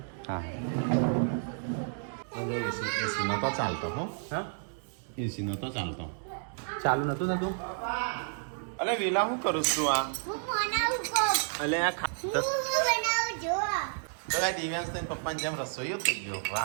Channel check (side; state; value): left; silent; digital silence